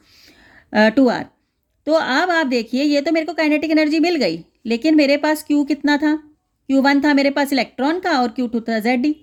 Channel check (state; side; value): identical; both; correlation 1.00